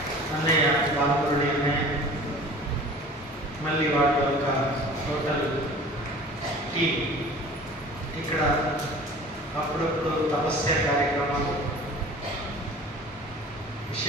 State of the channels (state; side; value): normal; both; correlation 0.43